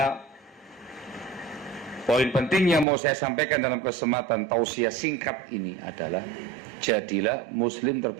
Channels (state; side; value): drops out; left; at 2.9 s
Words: poin penting yang mau saya sampaikan dalam kesempatan tausiah singkat ini adalah, jadilah muslim